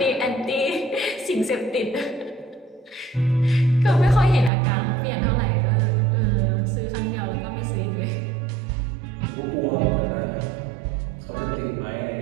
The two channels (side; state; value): left; drops out; at 4.5 s